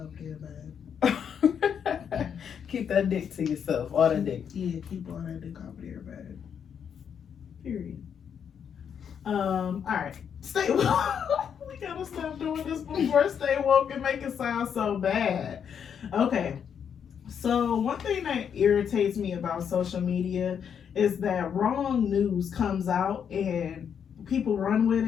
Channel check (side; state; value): right; quieter; 7.8 dB